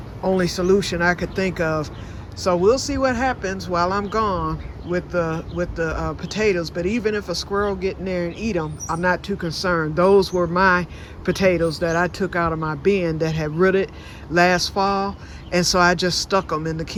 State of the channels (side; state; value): both; identical; correlation 1.00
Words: only solution I could think of. So we'll see what happens while I'm gone with the potatoes. But even if a squirrel get in there and eat them, I'm not too concerned. Those were my potatoes that I took out of my bin that had rooted last fall, and so I just stuck them in the